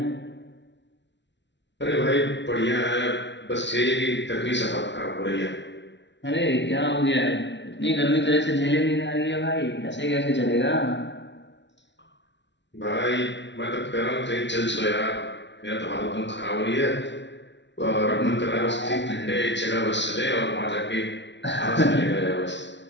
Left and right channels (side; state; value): right; late; 0.52 ms